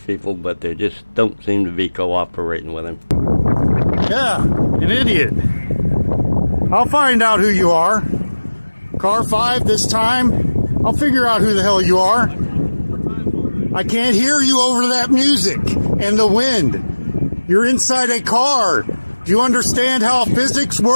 but they just don't seem to be cooperating with him. Yeah, an idiot. I'll find out who you are. Car 5 this time. I'll figure out who the hell you are. I can't hear you over that music and the wind. You're inside a car. Do you understand how physics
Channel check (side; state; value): both; inverted; correlation -1.00